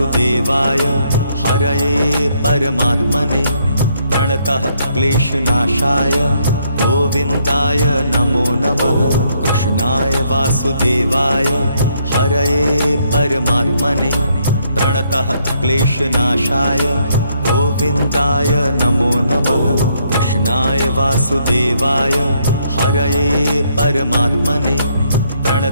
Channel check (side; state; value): both; inverted; correlation -0.72